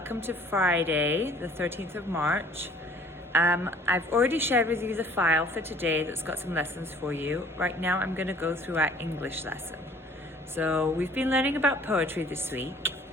to Friday, the 13th of March. I've already shared with you the file for today that's got some lessons for you. Right now, I'm going to go through our English lesson. So we've been learning about poetry this week,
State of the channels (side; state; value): both; normal; correlation 0.54